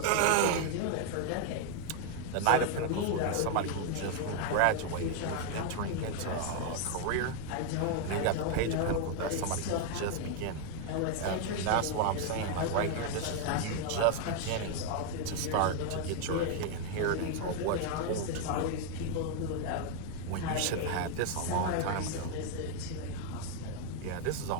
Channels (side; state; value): both; different; correlation 0.00